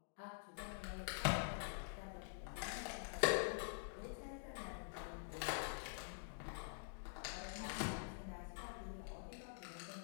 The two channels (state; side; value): silent; right; digital silence